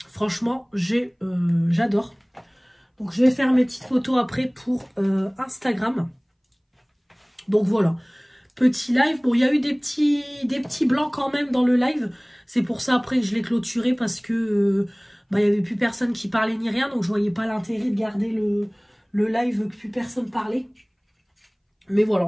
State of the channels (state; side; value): identical; both; correlation 1.00